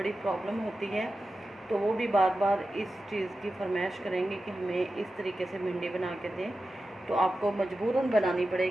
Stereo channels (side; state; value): both; normal; correlation 0.93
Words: प्रॉब्लम होती है। तो वो भी बार बार इस चीज़ की फरमाइश करेंगे कि हमें इस तरीके से भिंडी बना के दें, तो आपको मजबूरन बनानी